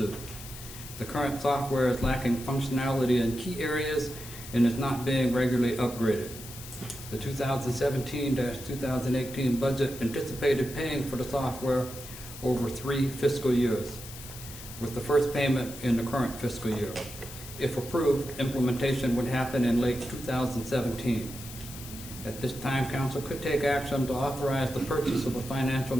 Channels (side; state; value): left; noise; hiss, 13 dB below the sound